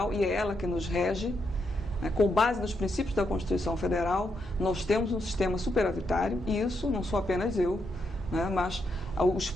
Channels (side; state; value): both; normal; correlation 0.80